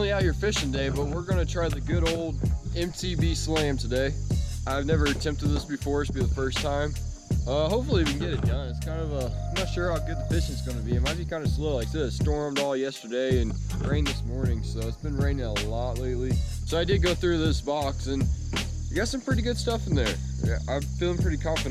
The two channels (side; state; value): both; identical; correlation 1.00